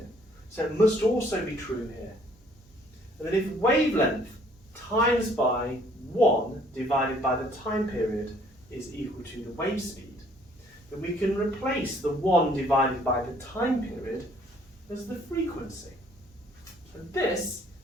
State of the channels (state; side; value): normal; both; correlation 0.60